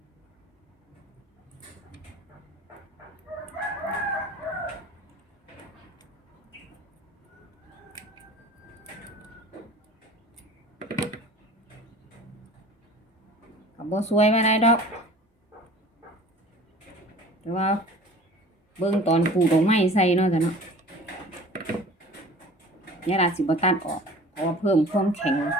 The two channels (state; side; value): normal; both; correlation 0.44